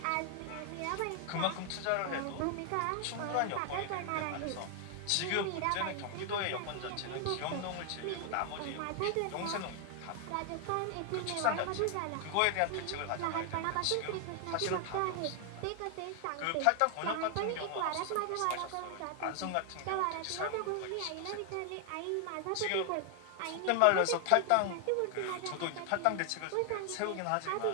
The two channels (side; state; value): both; different; correlation 0.00